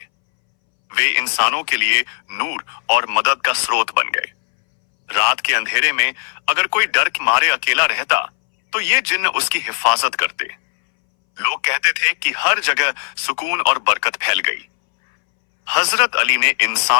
वे इंसानों के लिए नूर और मदद का स्रोत बन गए। रात के अंधेरे में अगर कोई डर के मारे अकेला रहता तो ये जिन्न उसकी हिफाजत करते। लोग कहते थे कि हर जगह सुकून और बरकत फैल गई। हजरत अली ने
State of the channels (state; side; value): silent; right; 65 dB below the other